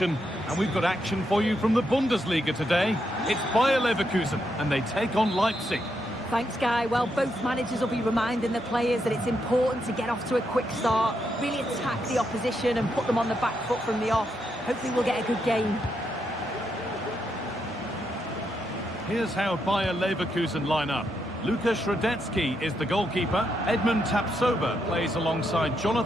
and we've got action for you from the Bundesliga today. It's Bayer Leverkusen, and they take on Leipzig. Thanks, Guy. Well, both managers will be reminding the players that it's important to get off to a quick start, really attack the opposition and put them on the back foot from the off. Hopefully we'll get a good game. Here's how Bayer Leverkusen line up. Lukas Radetzky is the goalkeeper. Edmund Tapsoba plays alongside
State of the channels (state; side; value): normal; both; correlation 0.81